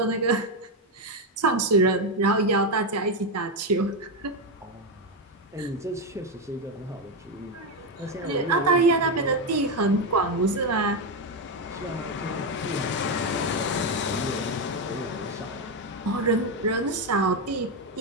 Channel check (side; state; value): both; normal; correlation 0.08